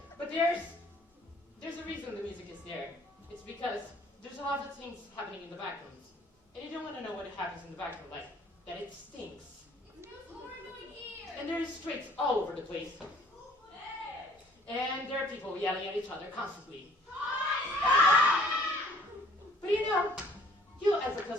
But there's a reason the music is there. It's because there's a lot of things happening in the back rooms. And you don't want to know what happens in the back room, like that it stinks. And there's streaks all over the place. And there are people yelling at each other constantly. But you know, you as a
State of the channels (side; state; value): both; normal; correlation 0.58